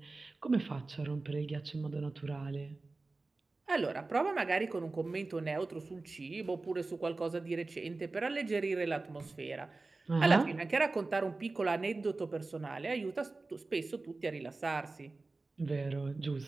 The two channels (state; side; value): quieter; left; 3.5 dB